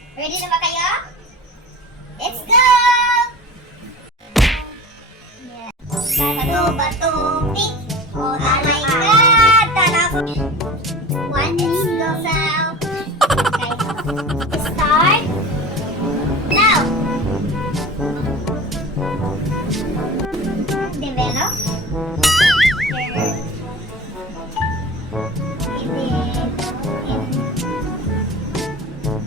Ready na ba kayo? Let's go! Yes. Bato, pick. Oh my God! Tanaw. One is goes out. Okay. Start. Now. Develop.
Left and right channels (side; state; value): both; normal; correlation 0.36